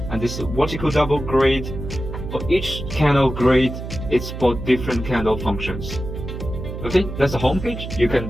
and this is a vertical double grid. For each candle grid, it's for different candle functions. Okay, that's the home page. You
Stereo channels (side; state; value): right; noise; hum, 8 dB below the sound